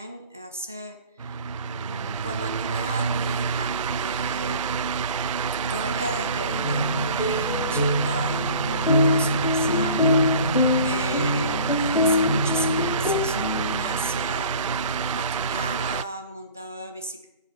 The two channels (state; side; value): inverted; both; correlation -0.44